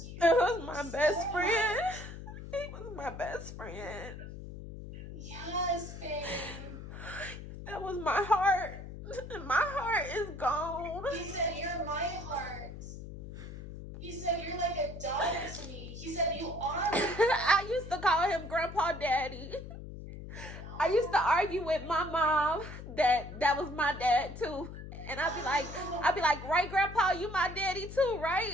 you. That was my best friend. He was my best friend. Yes, babe. That was my heart. My heart is gone. He said, you're my heart. He said, you're like a daughter to me. He said, you are my I used to call him Grandpa Daddy. I used to argue with my mom that was my dad too. And I'd be like, right, Grandpa, you my daddy too,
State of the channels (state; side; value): noise; left; hum, 11 dB below the sound